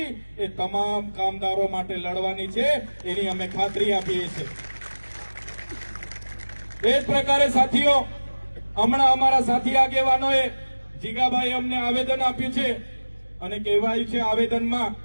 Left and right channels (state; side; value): inverted; both; correlation -1.00